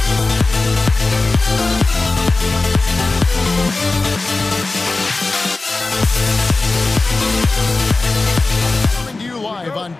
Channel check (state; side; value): quieter; right; 3.4 dB